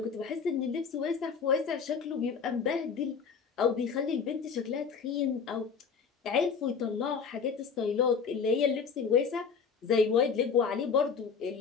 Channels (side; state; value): right; quieter; 6.0 dB